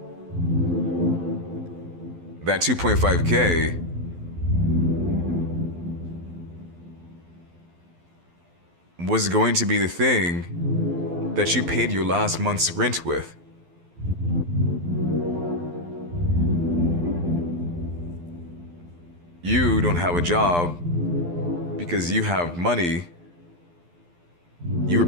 That 2.5K was going to be the thing that you paid your last month's rent with. You don't have a job because you have money. You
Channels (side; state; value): left; late; 12 ms